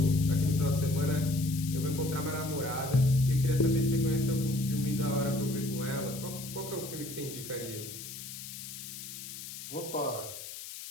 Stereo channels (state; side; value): noise; left; hiss, 10 dB below the sound